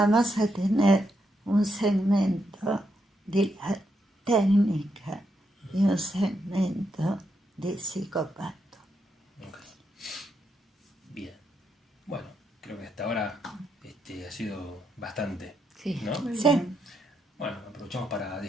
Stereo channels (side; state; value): both; normal; correlation 0.80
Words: a tener un segmento de la técnica y un segmento de psicopato. Okay. Bien. Bueno, creo que hasta ahora ha sido bastante. Sí. ¿No? Sí. Bueno, aprovechamos para